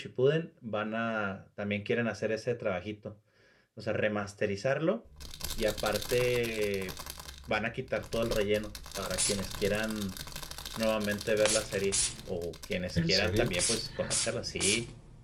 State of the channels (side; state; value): both; identical; correlation 1.00